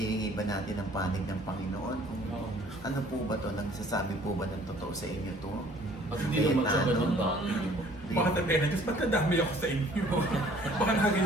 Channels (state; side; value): normal; both; correlation 0.55